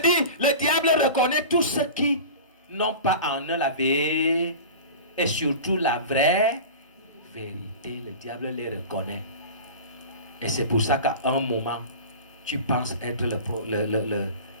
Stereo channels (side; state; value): both; inverted; correlation -0.34